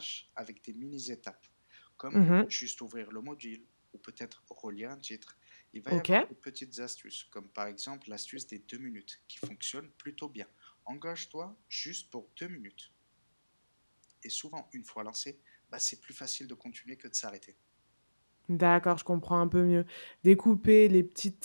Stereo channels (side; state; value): both; inverted; correlation -1.00